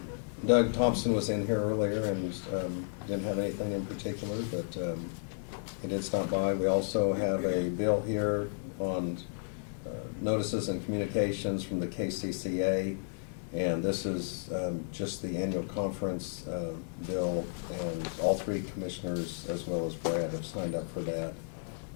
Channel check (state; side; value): silent; right; digital silence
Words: Doug Thompson was in here earlier and didn't have anything in particular, but he did stop by. We also have a bill here on notices and communications from the KCCA, and this is just the annual conference bill, and all three commissioners, as well as Brad, have signed up for that.